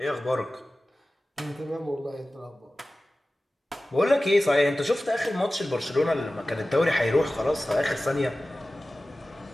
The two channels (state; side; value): normal; both; correlation 0.96